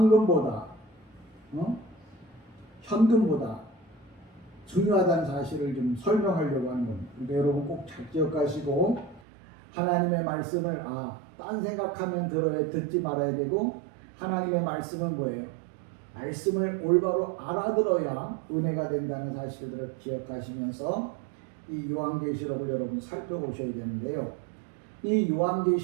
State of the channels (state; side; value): drops out; left; at 9.2 s